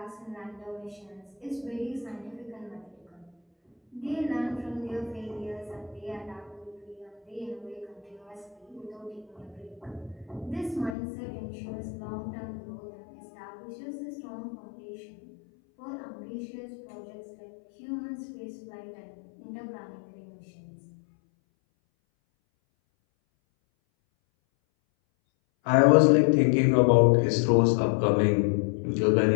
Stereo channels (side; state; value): right; drops out; at 11.0 s